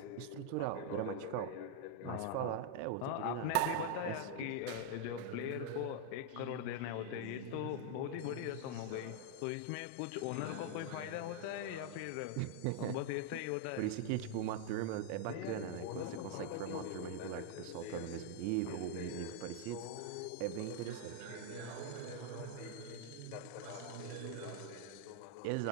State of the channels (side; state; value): both; different; correlation 0.00